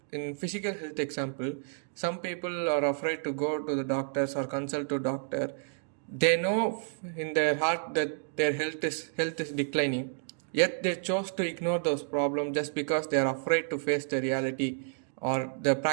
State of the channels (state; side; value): silent; left; digital silence